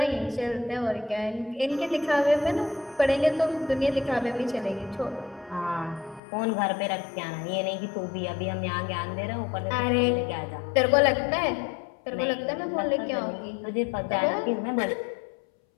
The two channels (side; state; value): right; drops out; at 6.2 s